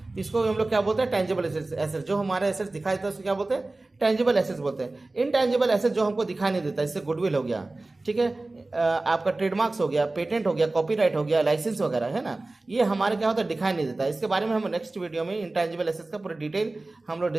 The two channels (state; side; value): quieter; left; 3.0 dB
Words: तो इसको हम लोग क्या बोलते हैं, टेंजिबल एसेट्स। जो हमारे एसेट्स दिखाई देता है उसको क्या बोलते हैं, टेंजिबल एसेट्स बोलते हैं। इनटेंजिबल एसेट्स जो हमको दिखाई नहीं देता, इससे गुडविल हो गया, ठीक है, आपका ट्रेडमार्क्स हो गया, पेटेंट हो गया, कॉपीराइट हो गया, लाइसेंस वगैरह है ना, ये हमारे क्या होता है, दिखाई नहीं देता। इसके बारे में हम नेक्स्ट वीडियो में इनटेंजिबल एसेट्स का पूरा डिटेल हम लोग